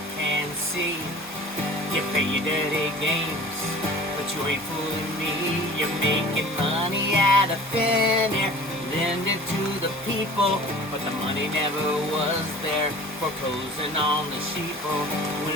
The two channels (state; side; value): normal; both; correlation 0.43